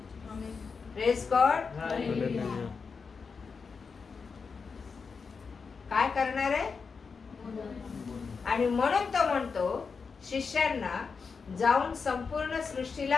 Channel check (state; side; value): quieter; right; 5.2 dB